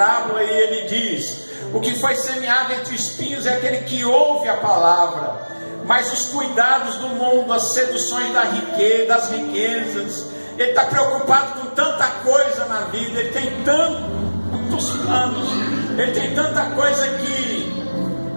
e ele diz: o que foi semeado entre espinhos é aquele que ouve a palavra, mas os cuidados do mundo, as seduções das riquezas, ele está preocupado com tanta coisa na vida, ele tem tanto tantos planos, ele tem tanta coisa que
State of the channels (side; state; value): both; inverted; correlation -1.00